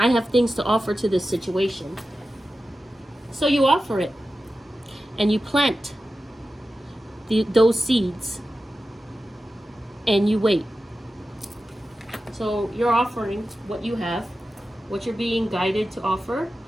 have things to offer to this situation. So you offer it. And you plant those seeds. And you wait. So you're offering what you have, what you're being guided to offer.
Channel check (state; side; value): normal; both; correlation 0.93